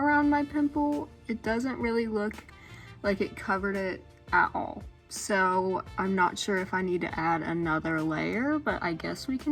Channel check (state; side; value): identical; both; correlation 1.00